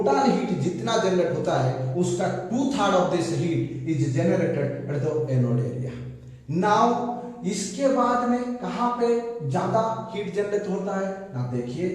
heat जितना जनरेट होता है, उसका 2/3 of this heat is generated at the anode area. Now इसके बाद में कहां पे ज्यादा हीट जनरेट होता है ना,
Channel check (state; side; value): identical; both; correlation 1.00